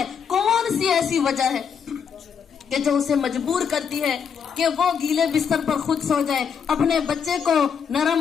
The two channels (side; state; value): right; quieter; 7.0 dB